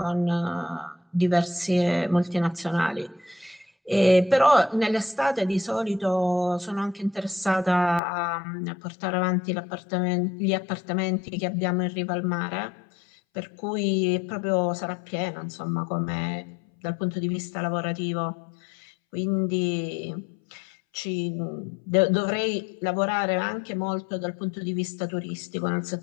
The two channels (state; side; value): drops out; right; at 8.0 s